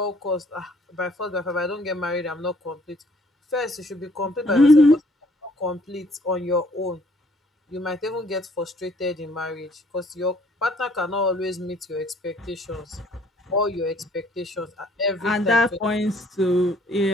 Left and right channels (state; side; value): normal; both; correlation 0.61